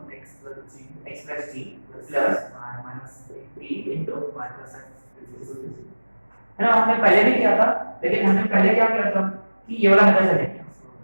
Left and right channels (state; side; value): inverted; both; correlation -1.00